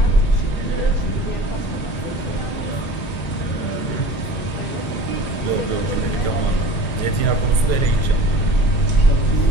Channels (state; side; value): late; right; 1.9 ms